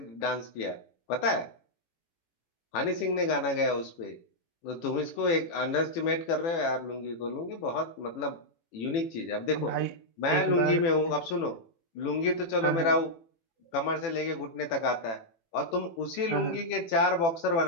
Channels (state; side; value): late; right; 18 ms